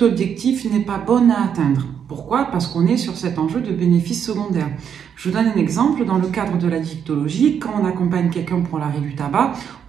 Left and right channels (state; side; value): quieter; left; 8.0 dB